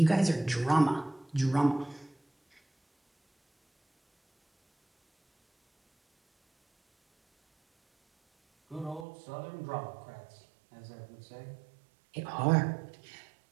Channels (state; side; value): drops out; left; at 9.1 s